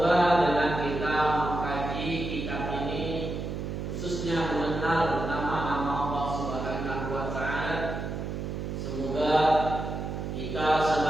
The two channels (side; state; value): right; noise; hum, 5 dB below the sound